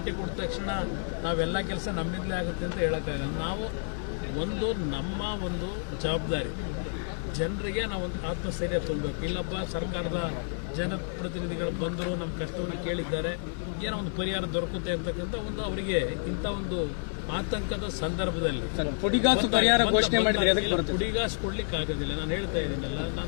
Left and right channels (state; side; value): silent; right; digital silence